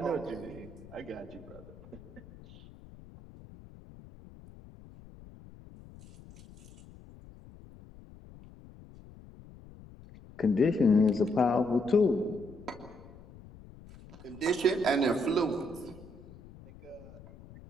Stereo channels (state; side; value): noise; left; rumble, 20 dB below the sound